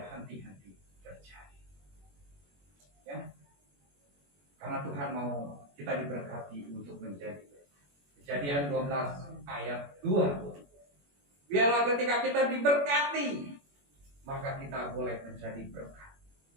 henti-henti terjadi. Ya, karena Tuhan mau kita diberkati untuk menjadi. Kejadian 12 ayat 2. Biarlah ketika kita diberkati, maka kita boleh menjadi berkat.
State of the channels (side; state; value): left; late; 21 ms